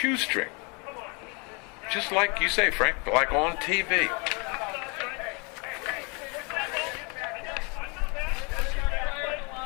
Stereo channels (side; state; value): right; quieter; 31.9 dB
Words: Just like you say, Frank, like on TV.